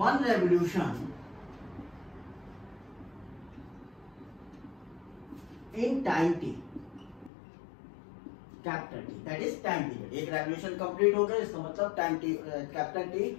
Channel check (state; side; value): drops out; right; at 7.3 s